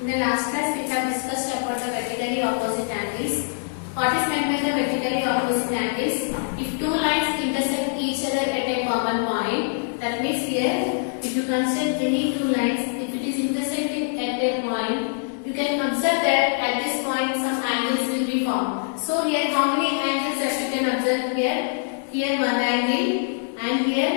In the last class, we have discussed about the vertically opposite angles. What is meant by the vertically opposite angles? If two lines intersect each other at a common point, that means here, if you consider any two lines, if it is intersecting at a point, you can observe that at this point some angles will be formed. So here, how many angles that you can observe here? Here one angle, and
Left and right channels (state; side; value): silent; right; digital silence